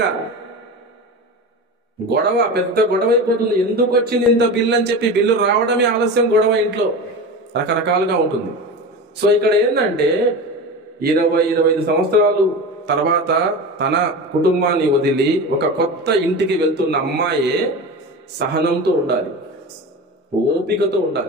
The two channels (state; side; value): normal; both; correlation 0.28